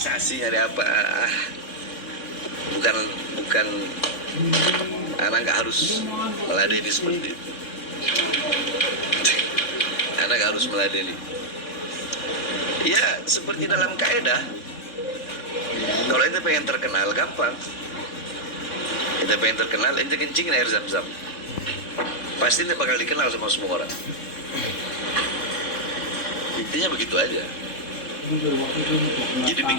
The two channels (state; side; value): late; right; 3.7 ms